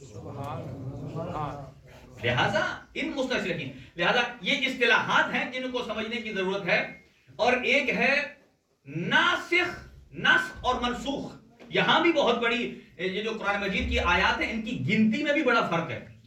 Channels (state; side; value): identical; both; correlation 1.00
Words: لہذا ان مستشرقین، لہذا یہ اصطلاحات ہیں جن کو سمجھنے کی ضرورت ہے۔ اور ایک ہے ناسخ، نسخ اور منسوخ، یہاں بھی بہت بڑی یہ جو قرآن مجید کی آیات ہیں ان کی گنتی میں بھی بڑا فرق ہے۔